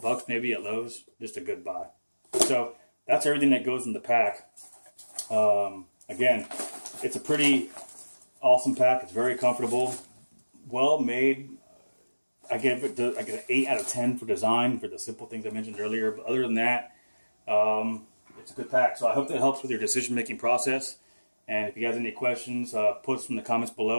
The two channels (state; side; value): inverted; both; correlation -1.00